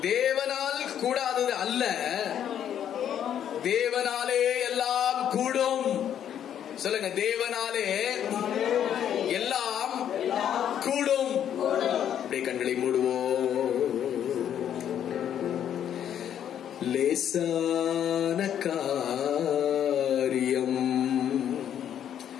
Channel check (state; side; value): quieter; right; 9.7 dB